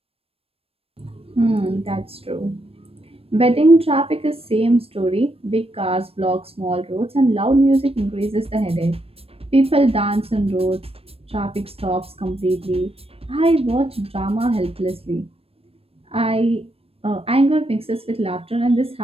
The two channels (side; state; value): left; late; 0.28 ms